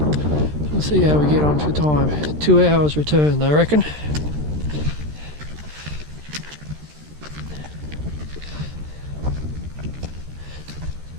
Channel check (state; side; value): late; left; 13 ms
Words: We'll see how we get on for time. 2 hours return, I reckon.